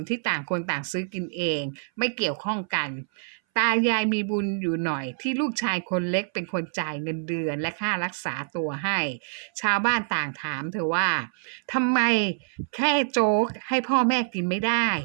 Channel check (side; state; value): left; silent; 60 dB below the other